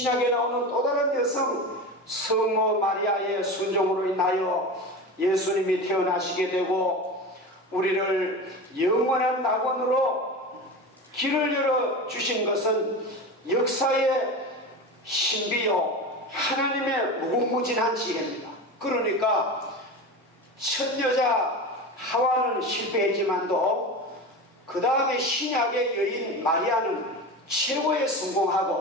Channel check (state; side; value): normal; both; correlation 0.27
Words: 나오는 또 다른 여성 성모 마리아의 순종으로 인하여 예수님이 태어나시게 되고 우리를 영원한 낙원으로 길을 열어주신 것은 역사의 신비요 하나님의 무궁무진한 지혜입니다. 그러니까 첫 여자 하와는 실패했지만도 그 다음에 신약의 여인 마리아는 최고의